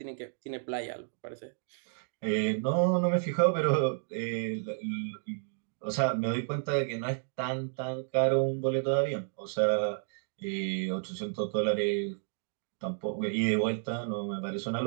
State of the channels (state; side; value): silent; left; digital silence